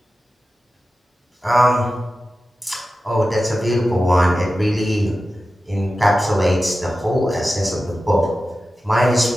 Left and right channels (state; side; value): normal; both; correlation 0.94